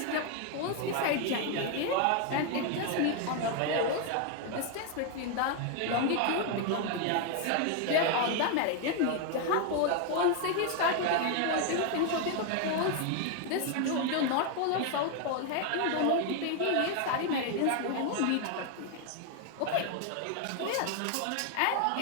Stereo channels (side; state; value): both; different; correlation 0.01